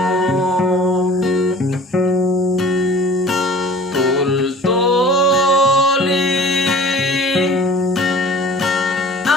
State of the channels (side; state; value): both; normal; correlation 0.45